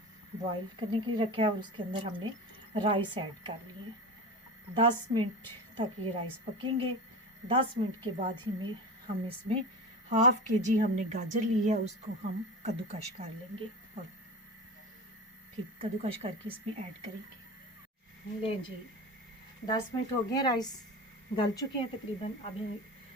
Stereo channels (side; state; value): both; normal; correlation 0.29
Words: बॉईल करने के लिए रखा है और उसके अंदर हमने राइस ऐड कर लिए। 10 मिनट तक ये राइस पकेंगे। 10 मिनट के बाद ही हम इसमें हाफ के जी हमने गाजर ली है, उसको हम कद्दूकश कर लेंगे और फिर कद्दूकश करके इसमें ऐड करेंगे। ले जी, 10 मिनट हो गए, राइस गल चुके हैं तकरीबन। अब